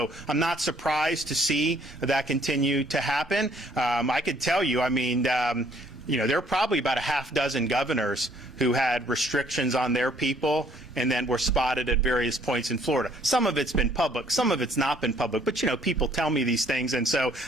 I'm not surprised to see that continue to happen. I could tell you, I mean, there are probably about a half dozen governors who had restrictions on their people and then were spotted at various points in Florida. Some of it's been public, some of it's not been public, but people tell me these things, and so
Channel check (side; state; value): both; normal; correlation 0.63